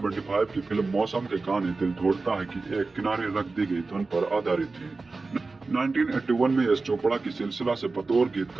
की फिल्म मौसम के गाने दिल तोड़ता है कि एक किनारे रख दी गई धुन पर आधारित थी। 1981 में एस चोपड़ा की सिलसिला से बतौर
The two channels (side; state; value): left; quieter; 3.8 dB